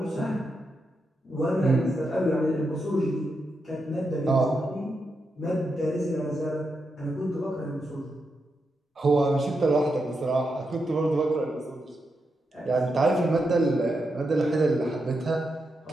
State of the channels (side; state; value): both; normal; correlation 0.85